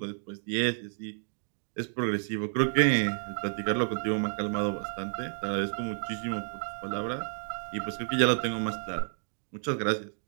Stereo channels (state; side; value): silent; left; digital silence